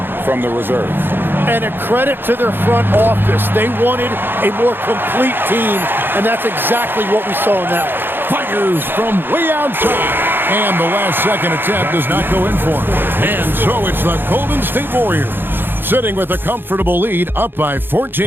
from the reserves. And a credit to their front office. They wanted a more complete team, and that's exactly what we saw in that one. Fires from way outside. And the last-second attempt does not go in for him. And so it's the Golden State Warriors, sitting with a comfortable lead up by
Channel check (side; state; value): left; late; 0.10 ms